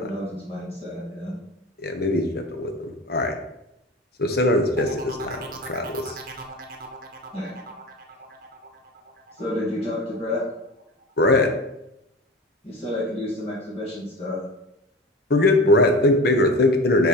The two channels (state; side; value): normal; both; correlation 0.33